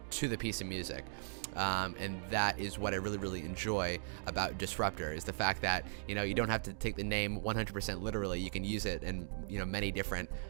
the piece of music. And that is what I really, really enjoy about Disruptor, is the fact that, you know, you don't have to take the name 100% literally. You can use it in, you know, many different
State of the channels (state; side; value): silent; left; digital silence